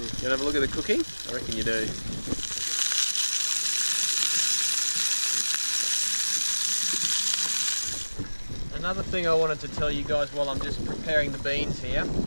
want to have a look at the cooking? I reckon you do. Another thing I wanted to tell you guys while I'm just preparing the beans here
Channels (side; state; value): both; inverted; correlation -1.00